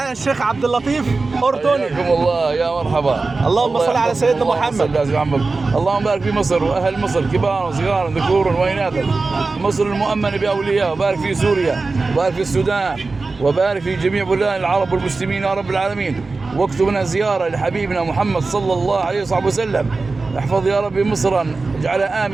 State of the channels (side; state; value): left; quieter; 3.8 dB